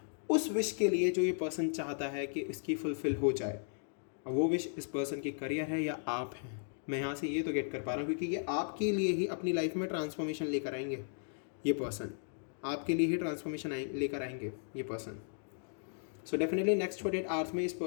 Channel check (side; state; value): right; silent; digital silence